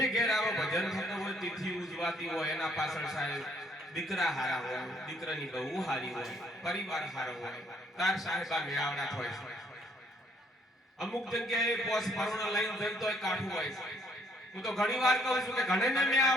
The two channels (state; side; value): normal; both; correlation 0.66